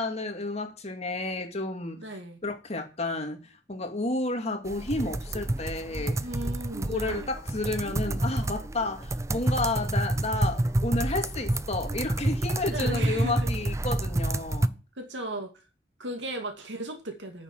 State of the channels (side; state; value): both; normal; correlation 0.59